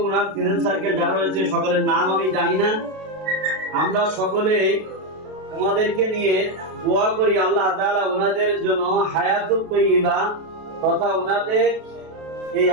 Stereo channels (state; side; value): late; left; 32 ms